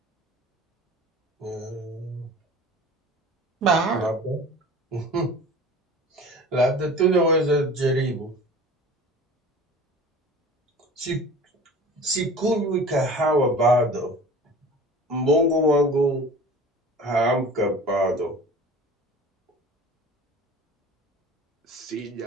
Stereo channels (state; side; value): normal; both; correlation 0.41